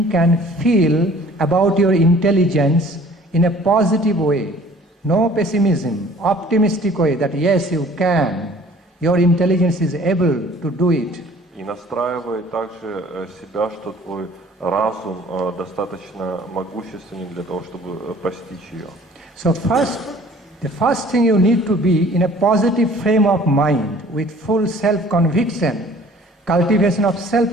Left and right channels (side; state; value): both; normal; correlation 0.52